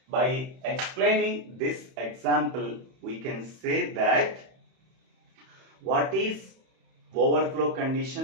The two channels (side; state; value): left; late; 31 ms